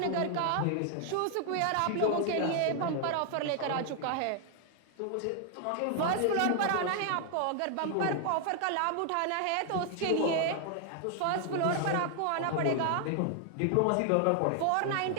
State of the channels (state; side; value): different; both; correlation 0.00